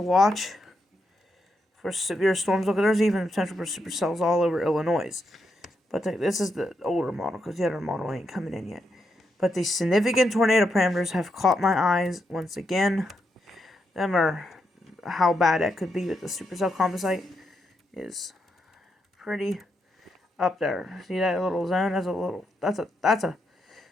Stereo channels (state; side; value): normal; both; correlation 0.82